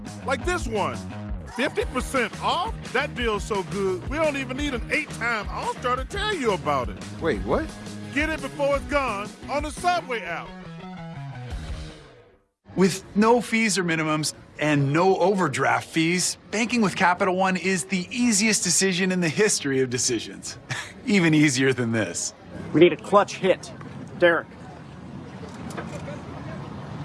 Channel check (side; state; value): both; identical; correlation 1.00